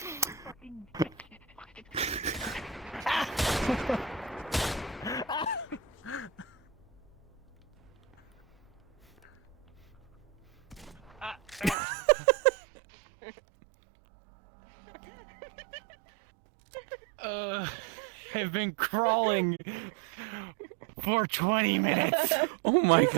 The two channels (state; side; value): drops out; left; at 11.8 s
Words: I've been crawling for 20 minutes. Oh my